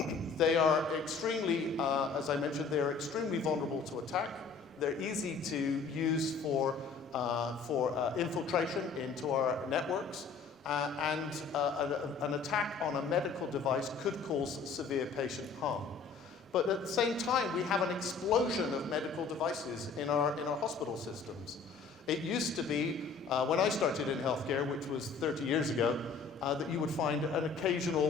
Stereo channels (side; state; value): right; quieter; 5.0 dB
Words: They are extremely, as I mentioned, they are extremely vulnerable to attack. They're easy to use for infiltration into our networks, and an attack on a medical device could cause severe patient harm. But at the same time, we have an explosion of medical devices in our hospital systems. It used to be, when I started in healthcare, which was 30 years ago, that you would find an